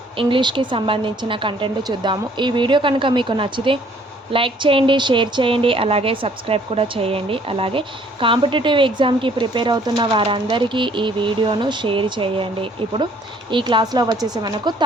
ఇంగ్లీష్కి సంబంధించిన కంటెంట్ చూద్దాము. ఈ వీడియో కనుక మీకు నచ్చితే లైక్ చేయండి, షేర్ చేయండి, అలాగే సబ్స్క్రైబ్ కూడా చేయండి. అలాగే కాంపిటేటివ్ ఎగ్జామ్కి ప్రిపేర్ అవుతున్న వారందరికీ ఈ వీడియోను షేర్ చేయండి. ఇప్పుడు ఈ క్లాస్లో వచ్చేసి మనకు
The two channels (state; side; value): normal; both; correlation 0.60